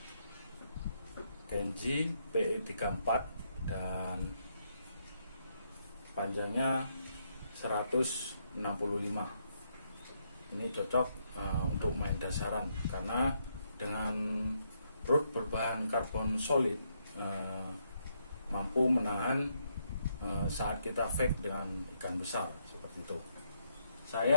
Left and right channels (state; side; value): inverted; both; correlation -0.76